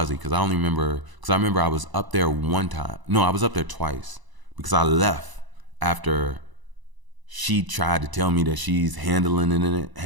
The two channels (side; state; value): left; late; 1.0 ms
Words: because I remember I was up there one time. No, I was up there twice, because I left after she tried to tell me that she's handling it,